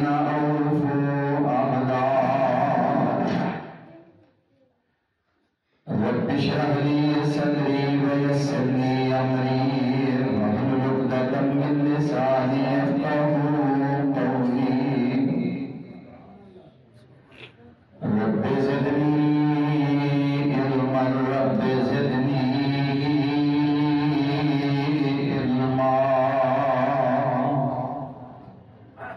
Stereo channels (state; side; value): identical; both; correlation 1.00